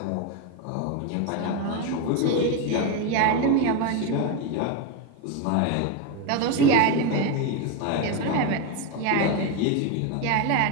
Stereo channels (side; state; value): both; different; correlation 0.03